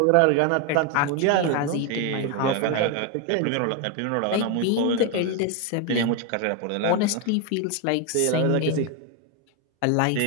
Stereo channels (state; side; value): different; both; correlation 0.02